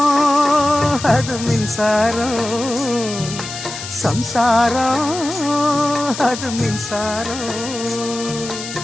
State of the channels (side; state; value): left; noise; hiss, 9 dB below the sound